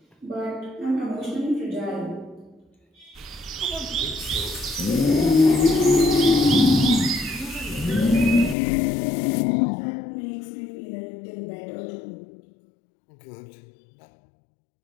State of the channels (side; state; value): right; drops out; at 8.6 s